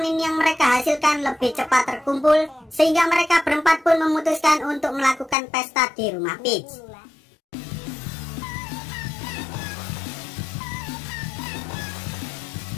yang mereka hasilkan lebih cepat terkumpul, sehingga mereka berempat pun memutuskan untuk melakukan pesta di rumah Peach.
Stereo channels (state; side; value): drops out; right; at 5.4 s